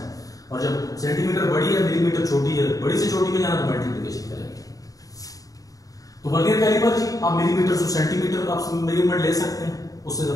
और जब सेंटीमीटर बड़ी है, मिलीमीटर छोटी है, बड़ी से छोटी में जाना तो मल्टीप्लिकेशन करेंगे। तो वर्नियर कैलिपर जी आप मिलीमीटर से सेंटीमीटर आप मेजरमेंट ले सकते हैं, उससे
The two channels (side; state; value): right; late; 0.17 ms